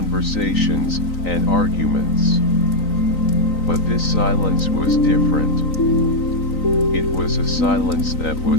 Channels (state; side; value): late; right; 3.9 ms